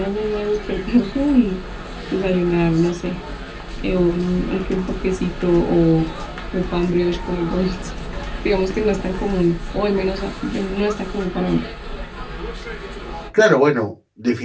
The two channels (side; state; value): both; identical; correlation 1.00